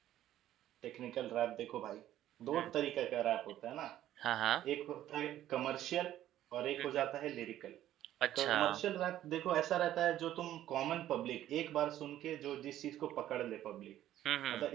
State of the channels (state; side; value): quieter; left; 12.7 dB